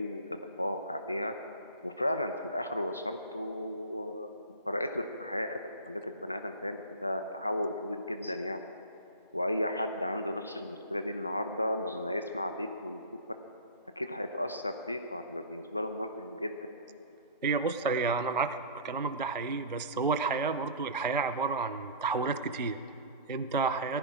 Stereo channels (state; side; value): inverted; both; correlation -0.36